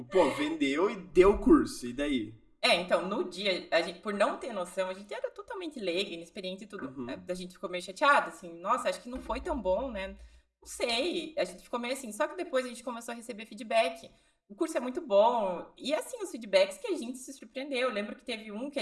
vendeu e deu o curso. E daí? Então, no dia, a gente, por não ter noção, a gente era totalmente leiga, inexperiente e tudo. A gente ficou meio chateada, assim, nossa, acho que não foi tão bom, né? Não sei, a gente ficou meio assim. Só que depois a gente começou a receber feedback. O curso é muito bom. E assim, os feedbacks que a gente se surpreendeu. Eu lembro que teve um que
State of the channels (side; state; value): both; identical; correlation 1.00